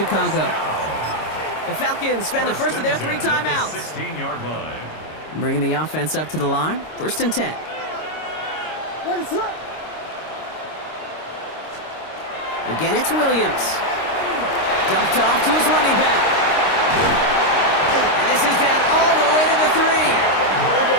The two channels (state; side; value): late; right; 26 ms